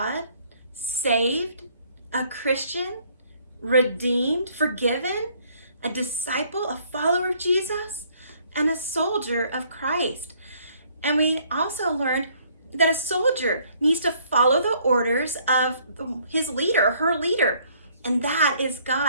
saved, a Christian, redeemed, forgiven, a disciple, a follower of Jesus, and a soldier of Christ. And we also learned that a soldier needs to follow the orders of his leader, her leader, and that is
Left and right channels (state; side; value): inverted; both; correlation -0.63